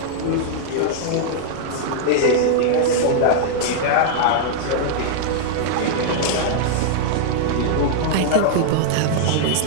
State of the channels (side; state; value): both; different; correlation -0.01